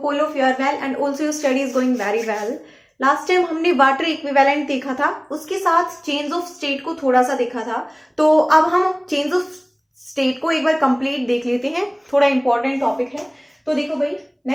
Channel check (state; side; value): identical; both; correlation 1.00